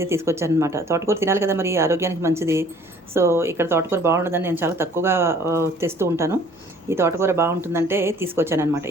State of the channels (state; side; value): normal; both; correlation 0.55